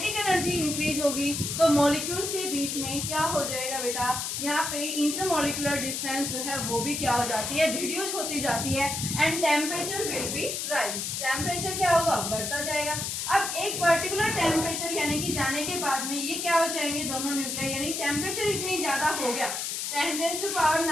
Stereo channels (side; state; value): left; noise; hiss, 3 dB below the sound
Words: एनर्जी इंक्रीज होगी तो मॉलिक्यूल्स के बीच में क्या हो जाएगा बेटा, यहाँ पे इंटरमॉलिक्यूलर डिस्टेंस जो है वो भी क्या हो जाती है, रिड्यूस होती जाती है and temperature will be rise. Temperature क्या होगा, बढ़ता जाएगा। अब एक पर्टिकुलर टेम्परेचर यानी कि जाने के बाद में ये क्या हो जाएंगे दोनों न्यूक्लियाई, यानी टेम्परेचर इतनी ज्यादा हो गया